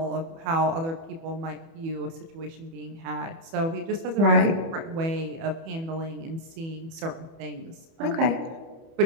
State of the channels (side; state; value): left; late; 30 ms